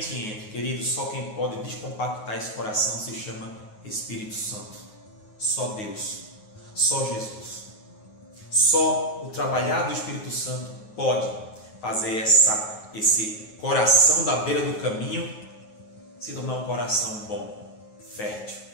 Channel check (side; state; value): right; late; 9.4 ms